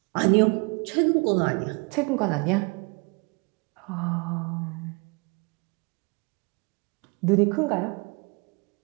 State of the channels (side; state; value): left; quieter; 30.6 dB